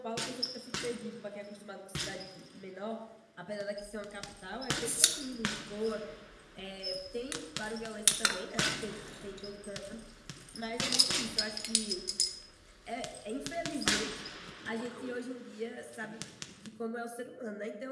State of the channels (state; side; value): identical; both; correlation 1.00